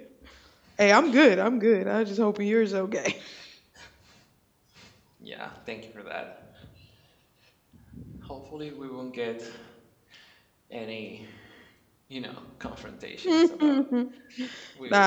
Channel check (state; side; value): identical; both; correlation 1.00